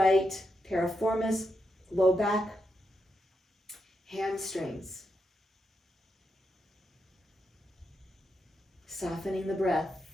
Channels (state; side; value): normal; both; correlation 0.84